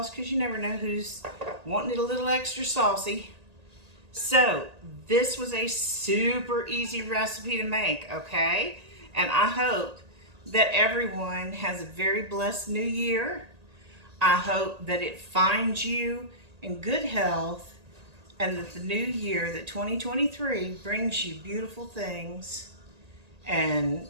because you never know who's wanting it a little extra saucy. So this was a super easy recipe to make, okay? And I hope that everyone has a very blessed new year. I hope that it finds you in good health, and that the new year, that 2023, brings you beautiful things and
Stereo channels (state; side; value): late; left; 1.8 ms